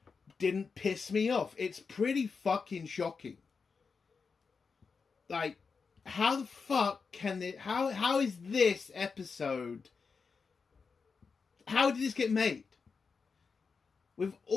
didn't piss me off. It's pretty fucking shocking. Like, how the fuck can it... How is this episode... How did this get made? With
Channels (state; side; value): quieter; right; 5.1 dB